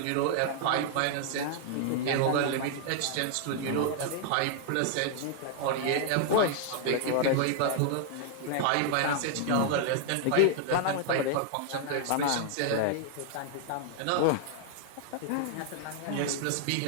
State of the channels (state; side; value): different; both; correlation 0.00